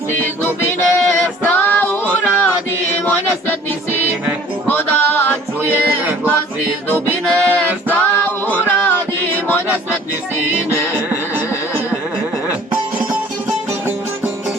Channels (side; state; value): both; normal; correlation 0.51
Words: iz dubine, šta uradi moj nesretni sine. Ko da čuje glas iz dubine, šta uradi moj nesretni sine.